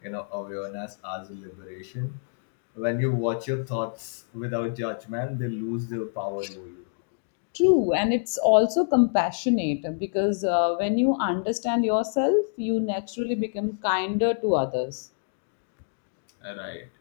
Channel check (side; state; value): right; silent; digital silence